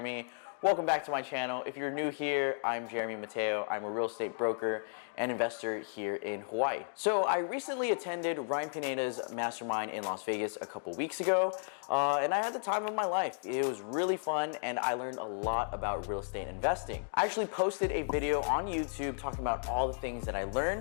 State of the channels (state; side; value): silent; right; digital silence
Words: Welcome back to my channel. If you're new here, I'm Jeremy Mateo. I'm a real estate broker and investor here in Hawaii. So I recently attended Ryan Pineda's Mastermind in Las Vegas a couple weeks ago, and I had the time of my life. It was really fun, and I learned a lot about real estate investing. I actually posted a video on YouTube talking about all the things that I